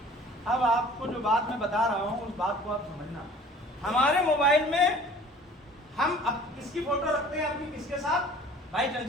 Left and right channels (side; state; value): both; normal; correlation 0.48